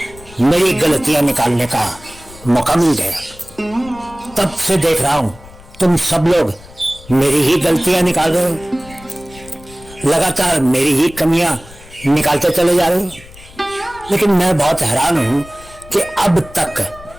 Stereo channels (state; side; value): noise; left; rumble, 21 dB below the sound